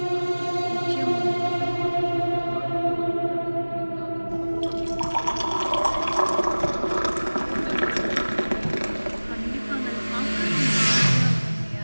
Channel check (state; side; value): inverted; both; correlation -1.00